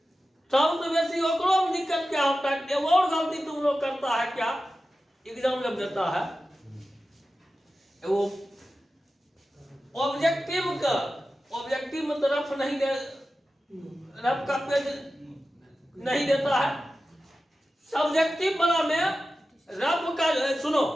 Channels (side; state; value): both; normal; correlation 0.93